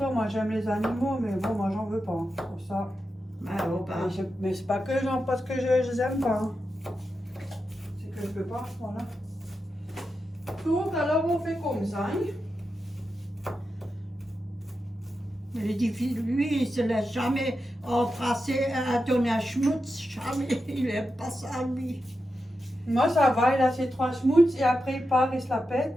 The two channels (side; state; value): both; normal; correlation 0.89